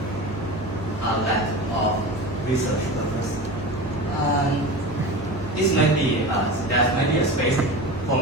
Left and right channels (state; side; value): normal; both; correlation 0.30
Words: a lack of research purpose. This might be, there might be a space for